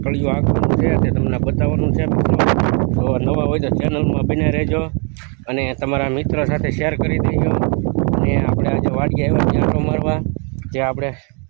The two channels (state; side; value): quieter; left; 37.0 dB